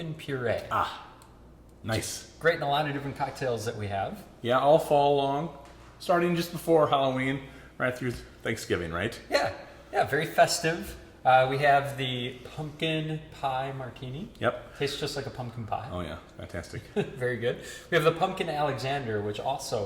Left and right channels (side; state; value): both; identical; correlation 1.00